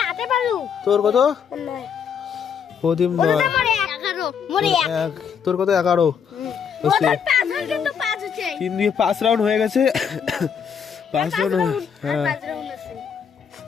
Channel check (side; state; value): right; quieter; 7.3 dB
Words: তোর কত প্রদীপ 9 তোর কত 11 3 দিয়ে 5 রাউন্ড হয়ে গেছে 5 রাউন্ড হ্যাঁ 5 রাউন্ড